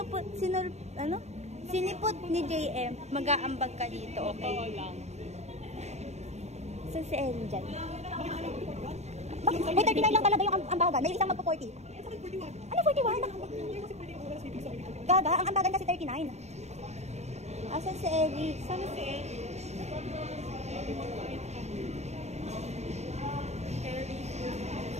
ni JM, mag-aambag ka dito, okay? Saan si Ellie dyan? May 39 lang talaga yung ambagan. May isang magpo-40. Ano 41? Gaga, ang ambagan kasi 39. Asan si Ellie? Saan si Ellie?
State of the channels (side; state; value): left; late; 0.32 ms